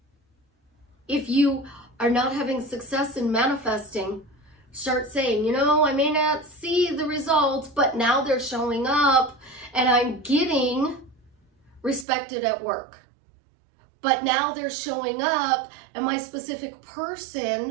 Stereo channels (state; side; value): drops out; left; at 12.1 s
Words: If you are not having success in manifesting, start saying, you know, I may not see the results, but now they're showing up and I'm getting respected at work. But now they're showing up and my specific